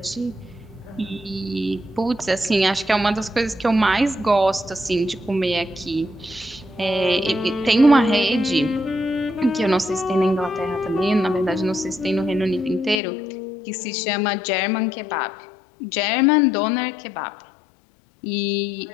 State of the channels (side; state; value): right; drops out; at 13.0 s